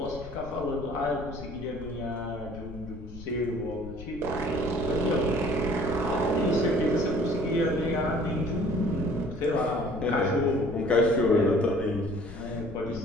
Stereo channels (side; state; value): left; noise; rumble, 14 dB below the sound